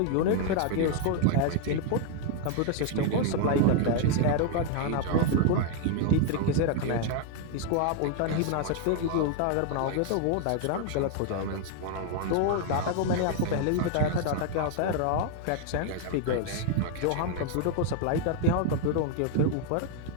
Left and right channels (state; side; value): different; both; correlation 0.00